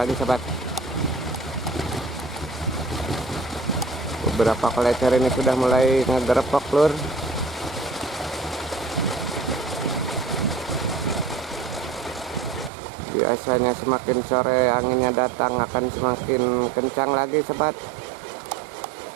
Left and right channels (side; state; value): left; drops out; at 12.7 s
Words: sahabat. Beberapa kolecer ini sudah mulai ngegerepok, lur. Biasanya semakin sore anginnya datang akan semakin kencang lagi, sahabat.